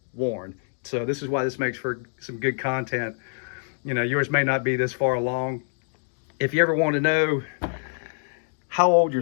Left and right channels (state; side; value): silent; right; 61 dB below the other